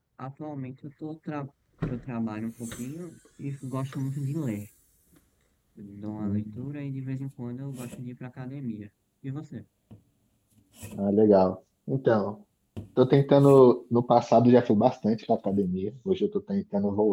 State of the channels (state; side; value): identical; both; correlation 1.00